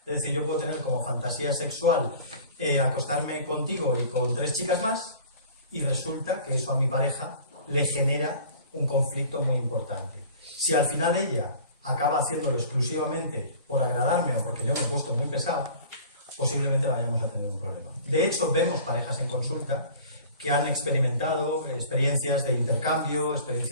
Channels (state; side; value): inverted; both; correlation -0.44